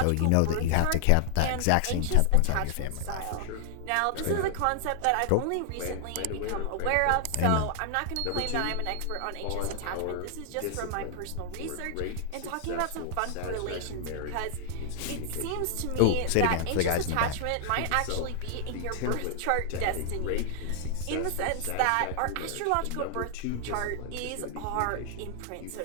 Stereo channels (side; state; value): both; different; correlation -0.01